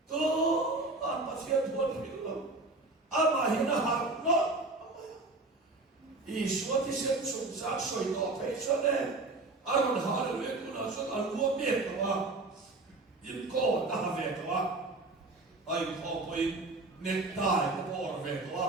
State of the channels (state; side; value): quieter; left; 3.2 dB